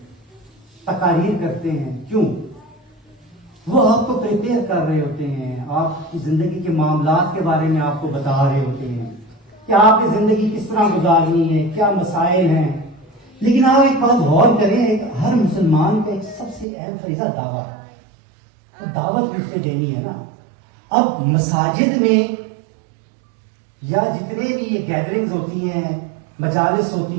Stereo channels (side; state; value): left; drops out; at 16.7 s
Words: تقاریر کرتے ہیں، کیوں؟ وہ آپ کو پریپیئر کر رہے ہوتے ہیں، آپ کی زندگی کے معاملات کے بارے میں آپ کو بتا رہے ہوتے ہیں کہ آپ کی زندگی کس طرح گزارنی ہے، کیا مسائل ہیں۔ لیکن آپ ایک بات غور کریں، ہر مسلمان کا ایک سب سے اہم فریضہ دعویٰ ہے۔ تو دعوت کس سے دینی ہے نا. اب مساجد میں یا جتنے بھی یہ گیدرنگز ہوتی ہیں, مجالس